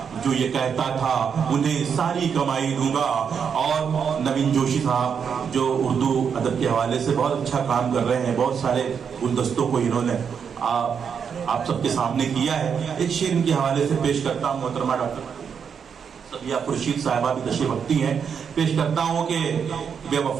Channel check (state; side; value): quieter; left; 6.9 dB